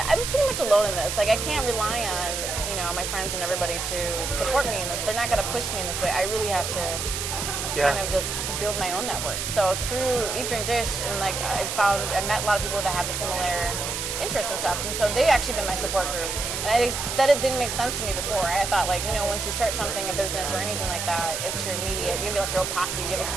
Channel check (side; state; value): right; noise; hiss, 3 dB below the sound